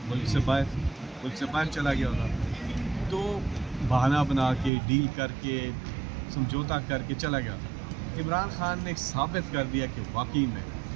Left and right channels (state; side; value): drops out; left; at 4.7 s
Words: ملک سے باہر چلا گیا ہوتا. تو بہانہ بنا کے ڈیل کر کے سمجھوتا کر کے چلا گیا ہوتا. عمران خان نے ثابت کر دیا کہ واقعی میں